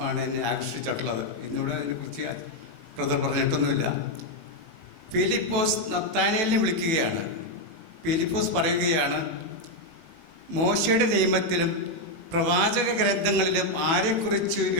ആണ് എന്നെ ആകർഷിച്ചിട്ടുള്ളത്. ഇന്നിവിടെ അതിനെക്കുറിച്ച് ബ്രദർ പറഞ്ഞിട്ടൊന്നുമില്ല. ഫിലിപ്പോസ് നത്താനേലിനെ വിളിക്കുകയാണ്. ഫിലിപ്പോസ് പറയുകയാണ്, മോശയുടെ നിയമത്തിലും പ്രവാചക ഗ്രന്ഥങ്ങളിലും ആരെക്കുറിച്ച്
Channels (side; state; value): left; late; 18 ms